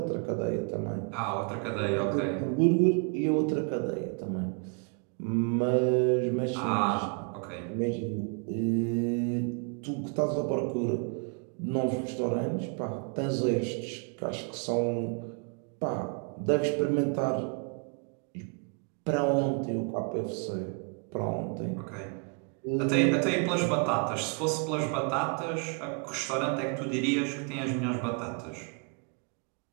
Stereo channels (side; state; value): left; quieter; 38.8 dB